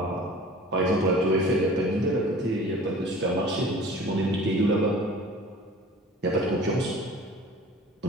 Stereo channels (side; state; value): both; normal; correlation 0.43